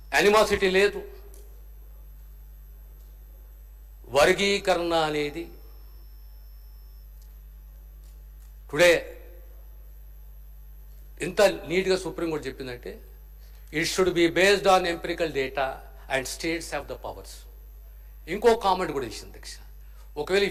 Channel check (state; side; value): identical; both; correlation 1.00